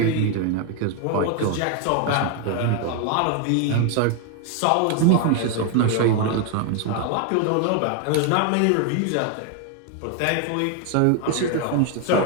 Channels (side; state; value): both; different; correlation 0.01